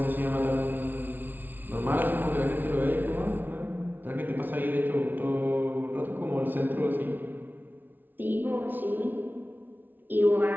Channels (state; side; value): late; left; 0.088 ms